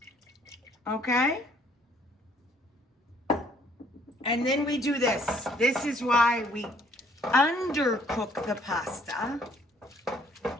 okay? And then we do this. This is why we undercook the pasta,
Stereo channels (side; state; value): both; normal; correlation 0.62